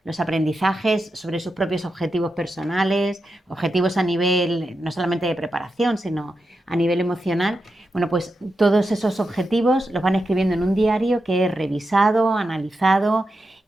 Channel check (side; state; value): both; normal; correlation 0.88